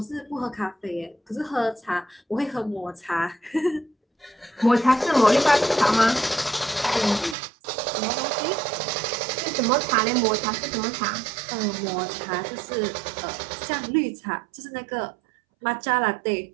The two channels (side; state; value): left; drops out; at 7.4 s